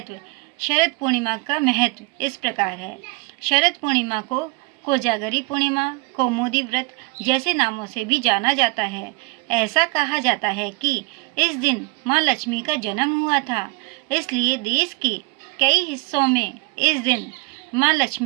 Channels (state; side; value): quieter; left; 26.5 dB